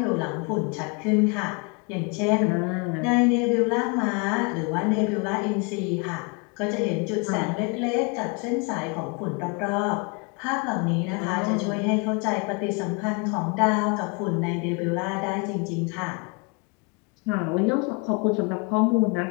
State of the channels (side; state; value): right; quieter; 31.7 dB